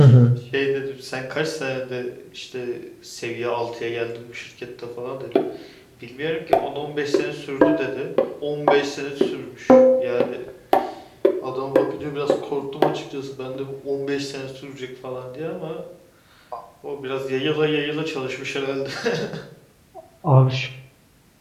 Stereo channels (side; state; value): both; identical; correlation 1.00